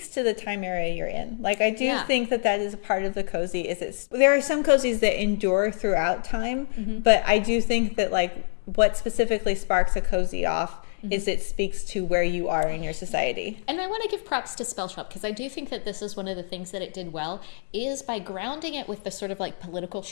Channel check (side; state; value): right; silent; digital silence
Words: to the time area you're in. Like, I do think that is a part of the cozy. There are some cozies that endure throughout time, but I do think that, like, what specifically sparks a cozy off is it speaks to where you are in your society. And I want to give props to Spell Shop, because I do think that this is one of the things that it did well, is by grounding it with the sort of like political